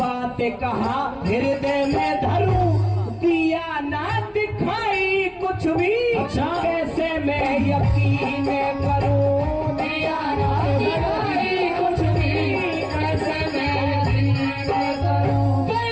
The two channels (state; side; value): identical; both; correlation 1.00